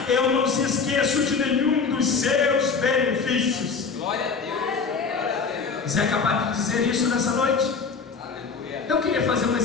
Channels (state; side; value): quieter; right; 5.2 dB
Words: Eu não se esqueço de nenhum dos seus benefícios. Glória a Deus. Você é capaz de dizer isso nessa noite? Aleluia. Eu queria fazer um